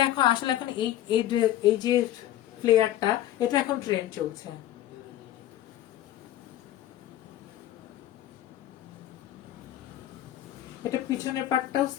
এখন আসলে এখন এই যে ফ্লেয়ারটা, এটা এখন ট্রেন্ড চলছে। এটা পিছনের পার্টটাও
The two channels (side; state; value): right; quieter; 13.1 dB